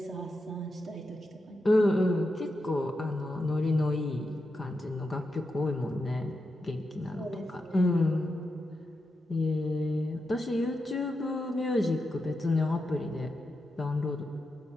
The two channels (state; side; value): normal; both; correlation 0.87